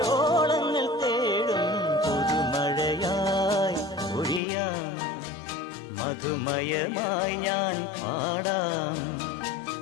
ഓളങ്ങൾ തേടും പുതുമഴയായി പൊഴിയാം, മധുമയമായി ഞാൻ പാടാം.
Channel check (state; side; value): drops out; right; at 4.4 s